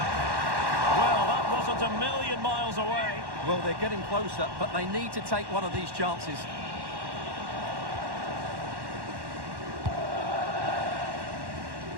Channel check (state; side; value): late; left; 1.1 ms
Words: Well, that wasn't a million miles away. Well, they're getting closer, but they need to take one of these chances.